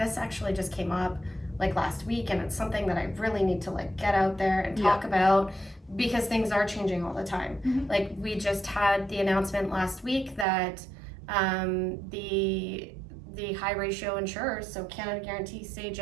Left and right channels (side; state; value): left; drops out; at 10.5 s